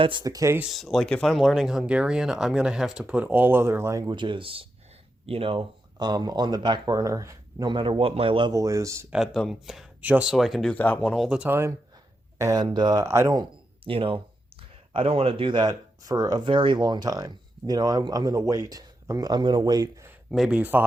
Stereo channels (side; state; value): both; normal; correlation 0.86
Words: the case, like if I'm learning Hungarian, I'm gonna have to put all other languages, on the back burner, no matter what my level is at them, just so I can do that one all the time. And you know, I don't want to do that for a very long time. I'm gonna wait. I'm gonna wait maybe